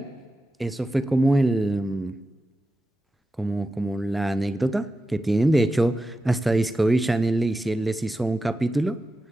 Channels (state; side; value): normal; both; correlation 0.92